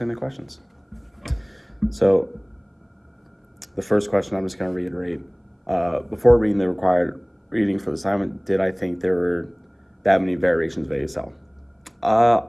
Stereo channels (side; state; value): both; identical; correlation 1.00